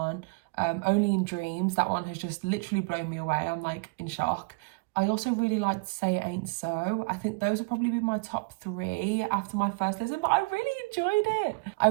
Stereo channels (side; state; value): left; quieter; 29.4 dB